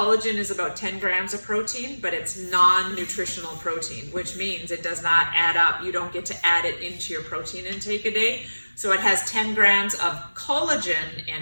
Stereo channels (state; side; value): inverted; both; correlation -1.00